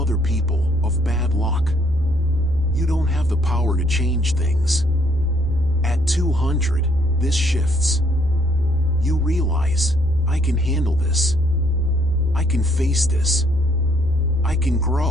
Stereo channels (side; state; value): right; noise; hum, 13 dB below the sound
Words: people, of bad luck. You don't have the power to change things. At 200, this shifts. You realize, "I can handle this. I can face this. I can